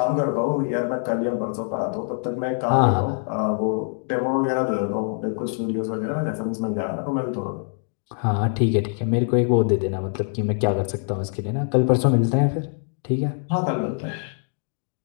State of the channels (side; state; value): right; silent; 61 dB below the other